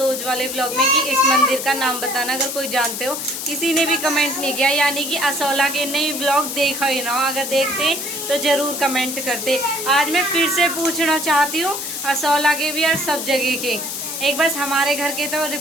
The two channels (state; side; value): noise; left; hiss, 5 dB below the sound